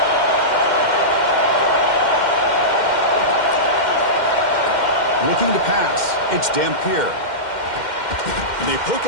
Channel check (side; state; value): right; late; 2.1 ms